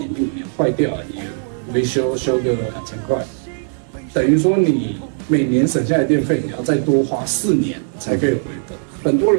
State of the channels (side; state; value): left; silent; digital silence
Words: 第5年坏掉了，你维修个2000块，等于说你每年省下来的电费你要再多花4年才可以回本。很多